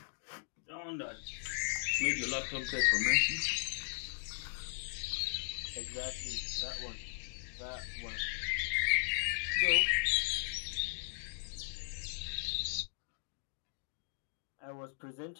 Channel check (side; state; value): right; silent; digital silence